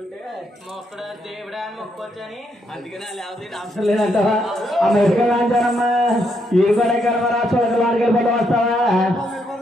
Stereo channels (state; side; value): normal; both; correlation 0.77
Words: మొక్కడ దేవుడా అని మొక్కొచ్చని అందుకనే లేకపోతే అవసరం లేదంటావా అమెరికా రాజారమ్మా ఈ కూడా కర్మరా చూడగలవాడికి పట్టు వస్తావా